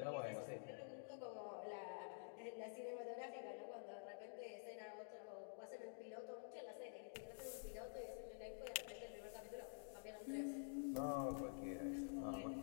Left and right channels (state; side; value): silent; right; digital silence